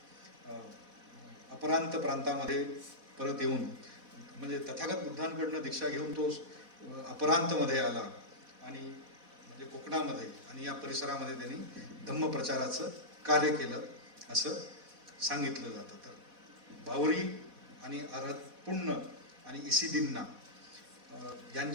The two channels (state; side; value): late; left; 4.1 ms